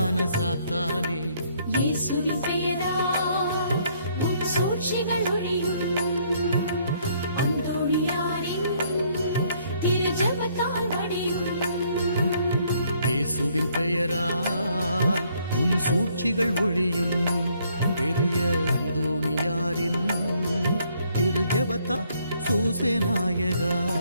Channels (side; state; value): both; inverted; correlation -0.67